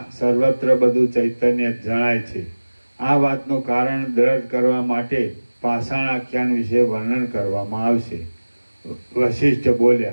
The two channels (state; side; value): inverted; both; correlation -1.00